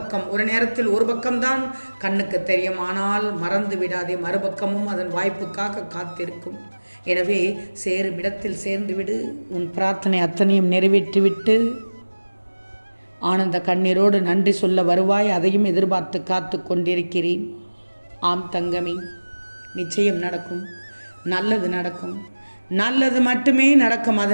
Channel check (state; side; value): inverted; both; correlation -1.00